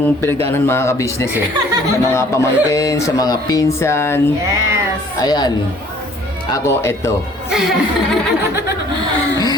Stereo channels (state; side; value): normal; both; correlation 0.56